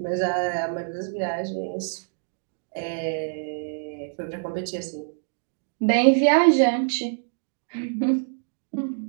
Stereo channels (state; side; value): silent; left; digital silence